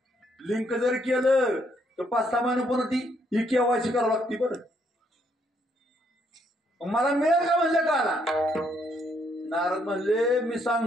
लिंक जर केलं तर 5-6 महिने पुन्हा ती ही केवायसी करावं लागते बरं. मला मिळेल का म्हणले काला. नारद म्हणले मी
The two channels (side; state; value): both; normal; correlation 0.72